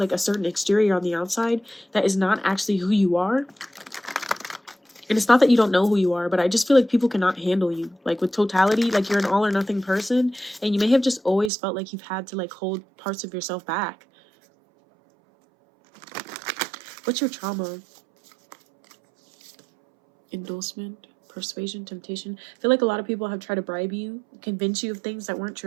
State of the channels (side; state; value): left; drops out; at 11.5 s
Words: a certain exterior on the outside that is not actually who you are. And it's not that you don't know who you are, but I just feel like people cannot handle you. Like with totality, like you're an all or nothing person. And you may have just always felt like you've had to like hold parts of yourself back. What's your trauma? Endorsement, persuasion, temptation. I feel like a lot of people have tried to bribe you, convince you of things that weren't